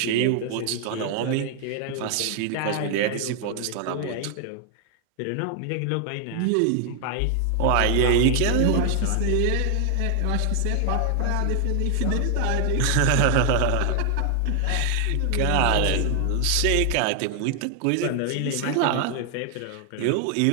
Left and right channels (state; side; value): different; both; correlation 0.00